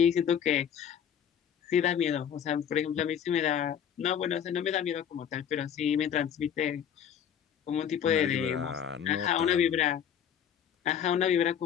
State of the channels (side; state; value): right; quieter; 8.7 dB